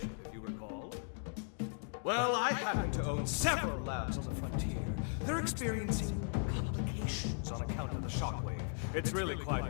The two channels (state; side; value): silent; right; 53 dB below the other